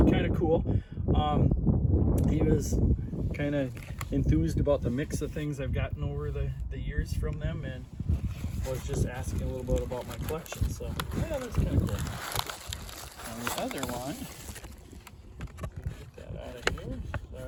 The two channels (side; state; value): both; identical; correlation 1.00